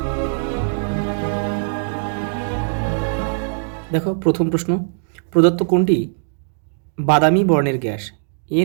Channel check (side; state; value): left; silent; digital silence